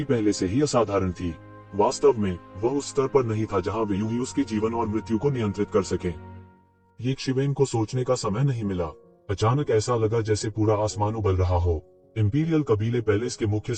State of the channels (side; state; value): both; identical; correlation 1.00